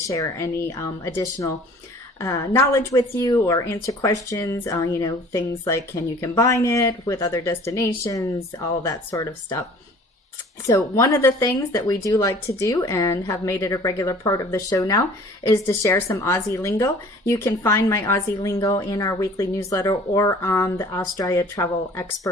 any additional knowledge with you or answer questions, things like can you combine it with other destinations, all that sort of stuff. So one of the things that we do like to do and have made it a regular part of the show now is to share some Aussie lingo. You can find my Aussie lingo in our weekly newsletter or on the Australia Travel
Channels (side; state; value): both; normal; correlation 0.49